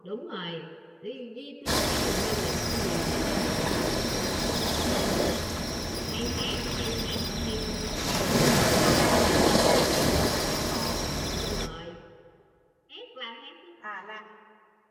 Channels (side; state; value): both; identical; correlation 1.00